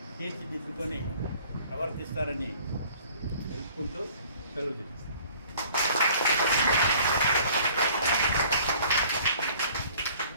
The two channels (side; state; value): both; inverted; correlation -0.53